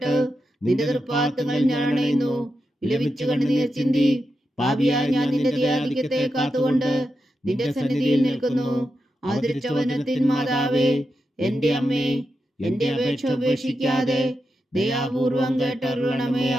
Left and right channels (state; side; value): normal; both; correlation 0.88